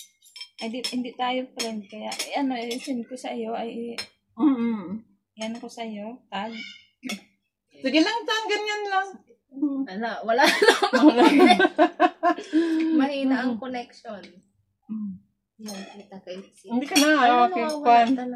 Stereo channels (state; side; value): identical; both; correlation 1.00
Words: Ay, hindi tayo friend. Kaya, send ko sa iyo. Ay, yan ko sa iyo. Tag. Sige lang, Tan. Ganyan lang. Wala lang. Mahina ang connection. Kita kayo. Hindi ka na. Okay, fun.